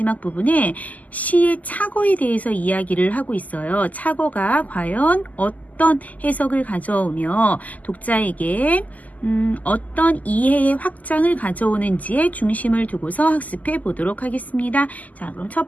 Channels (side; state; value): right; late; 0.078 ms